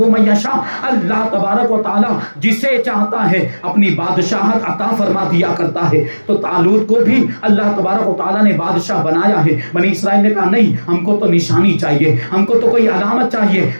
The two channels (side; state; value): both; inverted; correlation -1.00